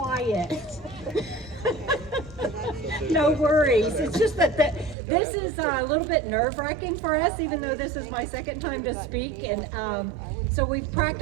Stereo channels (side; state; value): left; drops out; at 5.0 s